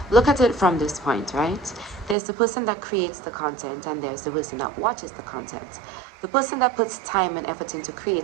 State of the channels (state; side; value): drops out; left; at 2.1 s